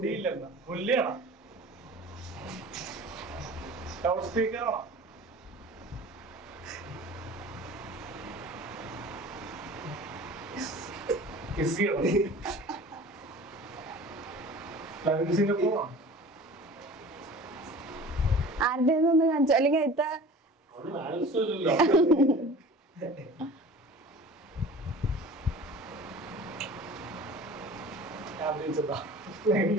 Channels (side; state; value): both; normal; correlation 0.41